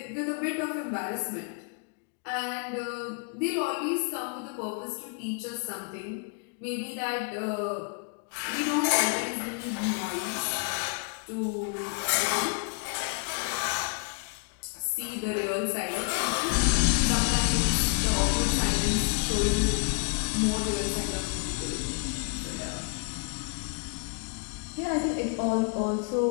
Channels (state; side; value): quieter; right; 36.4 dB